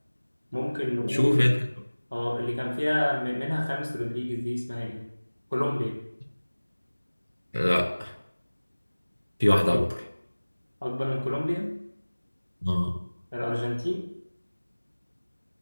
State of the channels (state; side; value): inverted; both; correlation -1.00